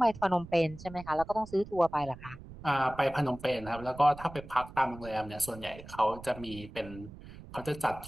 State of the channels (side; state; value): right; noise; rumble, 16 dB below the sound